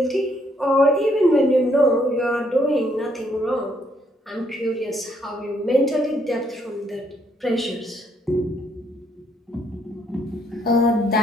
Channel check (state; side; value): normal; both; correlation 0.70